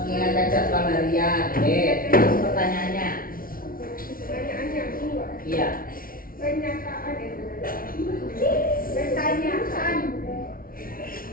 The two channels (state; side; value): late; right; 0.42 ms